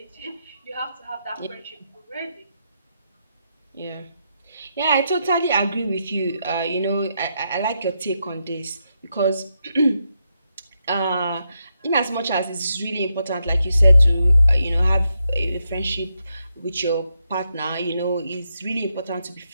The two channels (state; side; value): inverted; both; correlation -0.82